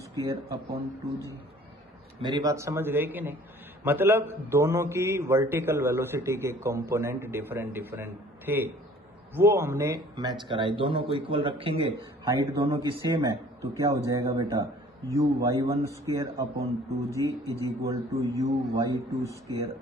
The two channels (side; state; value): both; normal; correlation 0.52